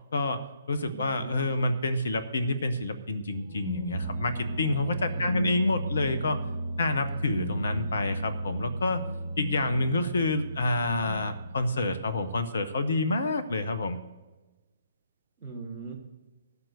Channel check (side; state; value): both; inverted; correlation -0.74